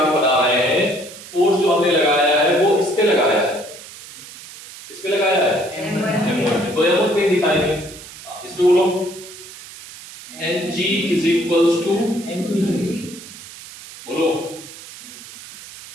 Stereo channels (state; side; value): noise; right; hiss, 16 dB below the sound